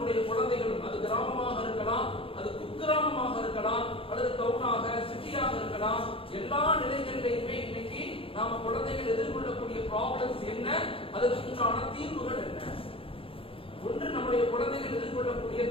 குழந்தைகளும், அது கிராமமாக இருக்கலாம், அது குக்கிராமமாக இருக்கலாம், அல்லது டவுனாக, சிட்டியாக இருக்கலாம், எல்லா நிலைகளிலையுமே இன்னைக்கு நாம குழந்தைகள் எதிர்கொள்ளக்கூடிய ப்ராப்ளம்ஸ் என்ன, அதற்குண்டான தீர்வுகள் என்ன. ஒன்று, நம்முடைய குழந்தைகள் எதிர்கொள்ளக்கூடிய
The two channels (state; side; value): late; right; 0.26 ms